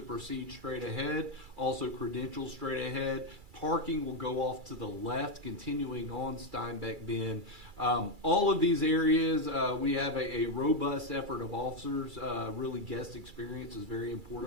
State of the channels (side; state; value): left; late; 2.3 ms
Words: proceed straight ahead, also credentials straight ahead. Parking will go off to the left, continuing on Steinbeck Bend. All of these areas, we have a robust effort of officers. Really, guest experience is very